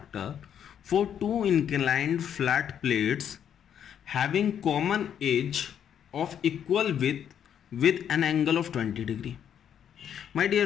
for 2 inclined flat plates having common edge of equal with an angle of 20 degree. माय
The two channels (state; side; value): quieter; right; 9.0 dB